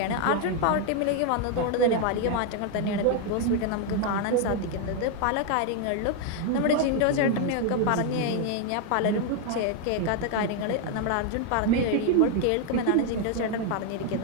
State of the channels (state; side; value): different; both; correlation 0.00